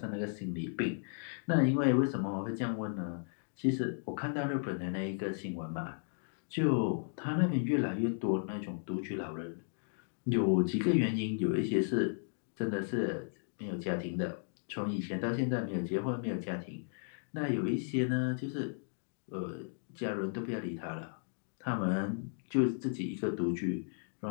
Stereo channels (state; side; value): silent; right; digital silence